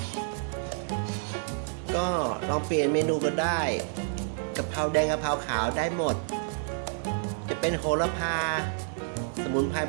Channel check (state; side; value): silent; left; digital silence